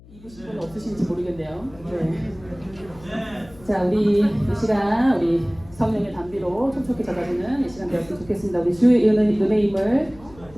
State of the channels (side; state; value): left; noise; hum, 22 dB below the sound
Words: 입으신 분 없으신지 모르겠네요. 네. 자, 우리 이 시간 우리 성령의 담비로 촉촉히 젖어주는 이 시간 되었으면 좋겠습니다. 우리 주의 은혜의 힘을